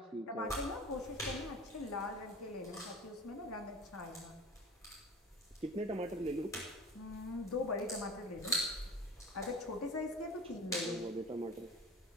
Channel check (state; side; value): normal; both; correlation 0.36